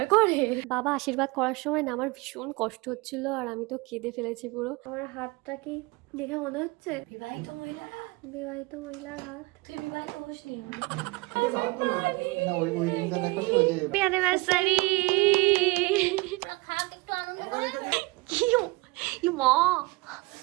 করে। বাবা আশীর্বাদ করার সময় না আমার ভীষণ কষ্ট হচ্ছিল আর আমি তো কেঁদে ফেলেছি পুরো। আমার হাতটা কি দেখে মনে হচ্ছে বিবাহিত মহিলার হাত? বিবাহিত মহিলার হাত। তুই বিবাহিত হসনি? Happy anniversary. খাক একটু আনন্দ করে। কি মা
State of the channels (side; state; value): left; quieter; 24.2 dB